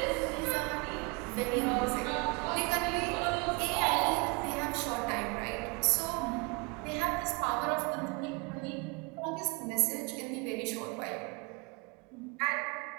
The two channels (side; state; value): left; quieter; 30.1 dB